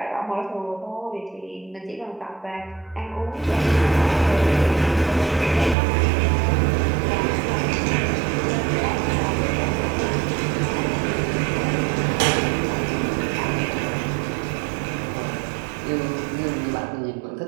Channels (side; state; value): left; drops out; at 5.8 s